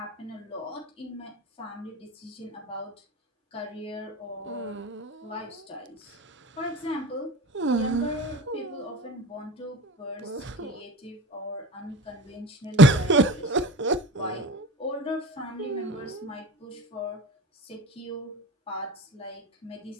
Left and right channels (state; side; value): normal; both; correlation 0.33